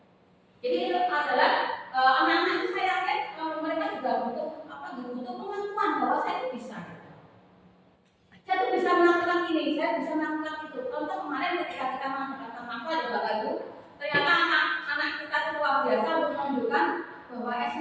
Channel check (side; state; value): both; identical; correlation 1.00